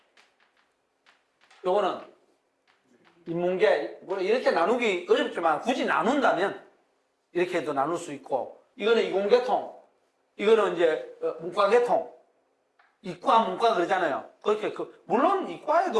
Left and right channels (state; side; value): identical; both; correlation 1.00